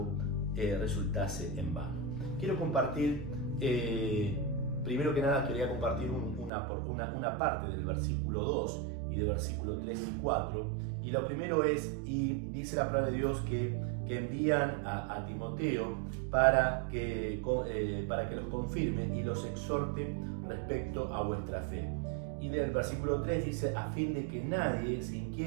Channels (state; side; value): drops out; left; at 6.5 s